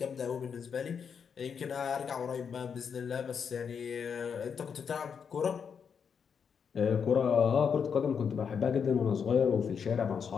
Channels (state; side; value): quieter; right; 6.8 dB